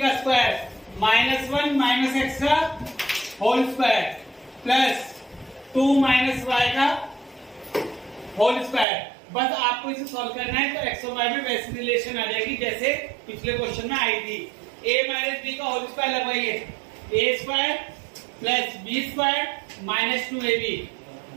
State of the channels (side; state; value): left; drops out; at 8.8 s